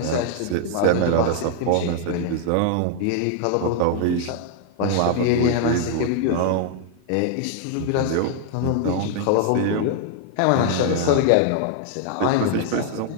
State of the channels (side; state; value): both; different; correlation 0.00